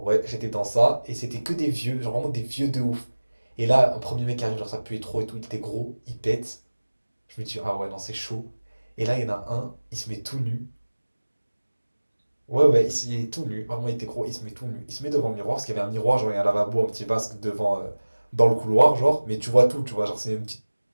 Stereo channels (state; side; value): inverted; both; correlation -1.00